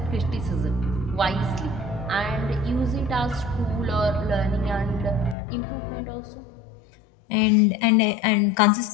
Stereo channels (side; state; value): right; drops out; at 5.4 s